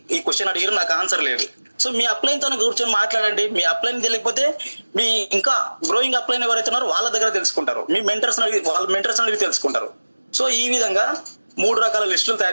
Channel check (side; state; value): both; inverted; correlation -1.00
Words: ఈ క్వశ్చన్ అడిగారు, నాకు ఆన్సర్ లేదు. సో మీ అప్లైన్తో కూర్చొని మాట్లాడండి. మీ అప్లైన్ తెలియకపోతే మీ ఇంకా గ్రోయింగ్ అప్లైన్ ఎవరైతే ఉన్నారో వాళ్ళ దగ్గర తెలుసుకుంటారు, మీ వాళ్ళ మెంటర్స్ అడిగి తెలుసుకుంటారు. సో ఈ విధంగా 3 రకాల లిస్టులు